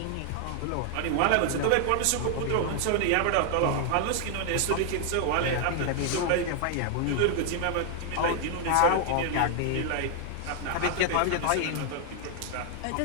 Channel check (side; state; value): both; different; correlation 0.00